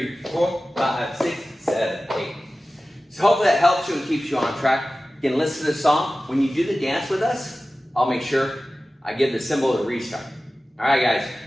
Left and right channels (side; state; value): both; normal; correlation 0.96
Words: 4, 5, 6, 7, 8. So hopefully that helps you and keeps you on track. You can listen to the song. When you do the dance with us, I'll make sure I give the symbol to restart. All right, guys,